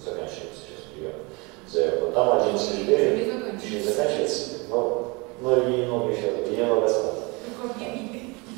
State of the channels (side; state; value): left; quieter; 27.8 dB